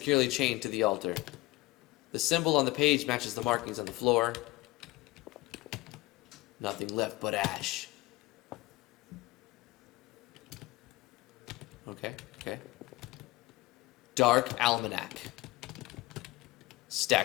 chained to the altar. The symbol on the page matches the markings on the floor. Nothing left but ash. Okay. Dark Almanac.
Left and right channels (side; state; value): right; quieter; 20.2 dB